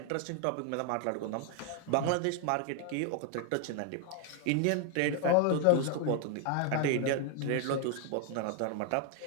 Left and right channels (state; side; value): different; both; correlation 0.00